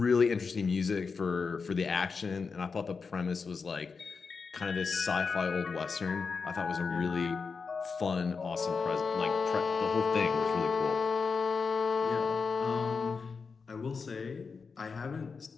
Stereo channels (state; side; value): quieter; right; 5.1 dB